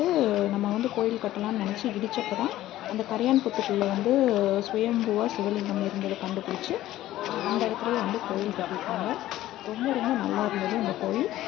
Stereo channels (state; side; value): quieter; right; 14.6 dB